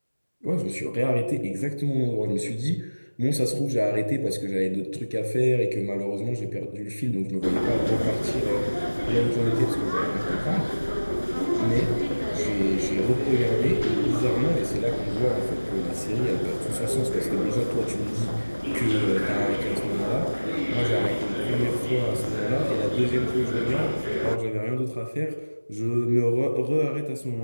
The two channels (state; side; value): inverted; both; correlation -1.00